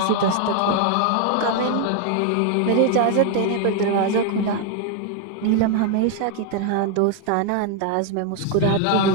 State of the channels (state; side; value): different; both; correlation 0.00